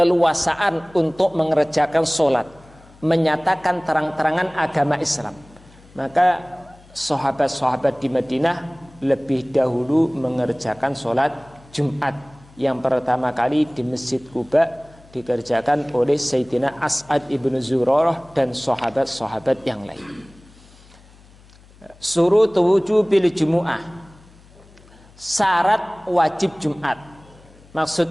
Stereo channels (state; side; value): noise; left; hum, 25 dB below the sound